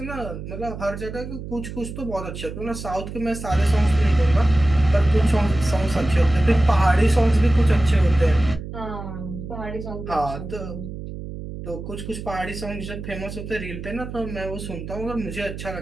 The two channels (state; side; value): noise; right; hum, 9 dB below the sound